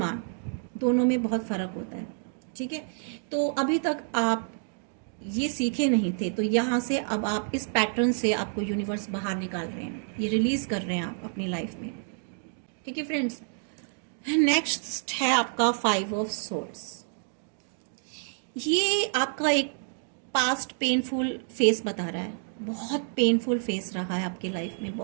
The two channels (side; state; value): left; silent; digital silence